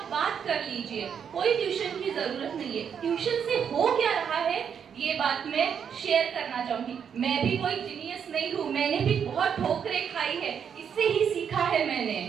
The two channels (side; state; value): left; quieter; 7.6 dB